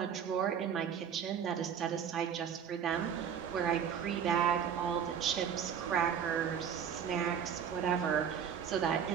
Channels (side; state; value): left; quieter; 8.0 dB